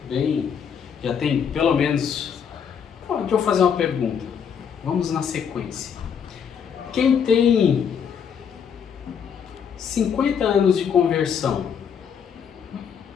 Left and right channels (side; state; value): right; quieter; 7.4 dB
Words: já tem pelo menos... Deixa eu fazer uma pergunta. Vamos na sequência. Quem tem 50 anos de conversão,